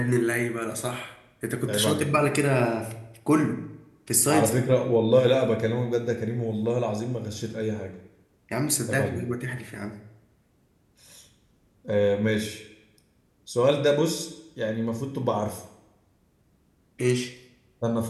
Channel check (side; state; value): both; identical; correlation 1.00